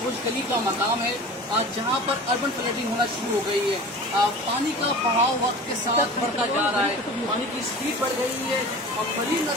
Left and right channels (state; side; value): normal; both; correlation 0.38